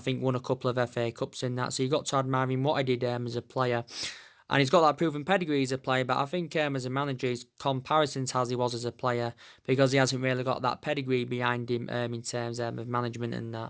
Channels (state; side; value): identical; both; correlation 1.00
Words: won a couple of FA Cups in that. So you got to admire him what he did as a player. And he's got that proven pedigree as a player, but I think as a manager, his comparisons as he was as a player, because he hasn't really got that pedigree behind him in terms of management and